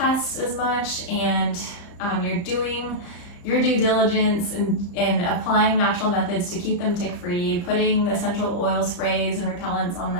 as much, and you're doing your due diligence in applying natural methods to keep them tick-free, putting essential oil sprays and repellents on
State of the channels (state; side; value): late; right; 35 ms